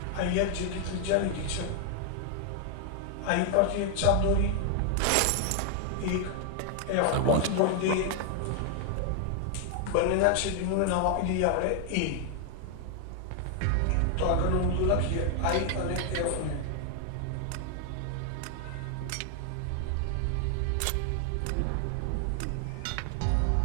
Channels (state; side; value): different; both; correlation 0.00